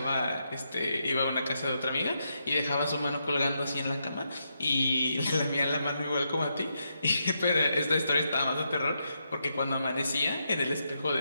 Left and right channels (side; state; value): both; inverted; correlation -0.82